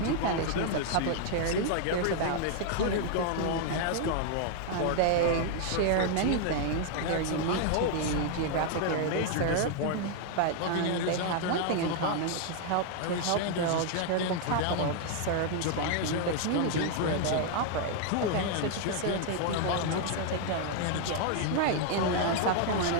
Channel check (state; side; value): different; both; correlation 0.00